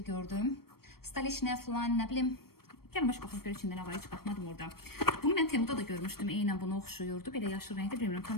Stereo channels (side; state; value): right; late; 0.94 ms